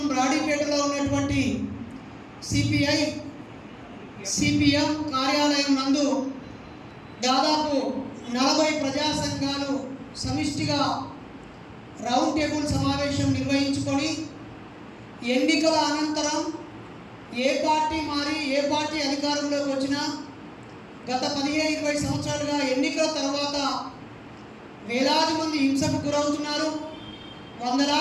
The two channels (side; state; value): both; identical; correlation 1.00